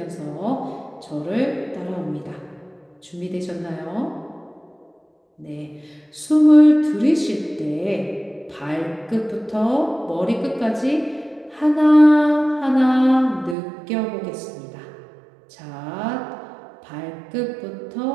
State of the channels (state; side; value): drops out; left; at 13.6 s